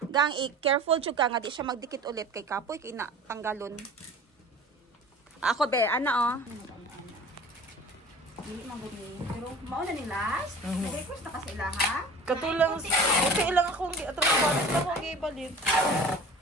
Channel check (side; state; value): both; normal; correlation 0.41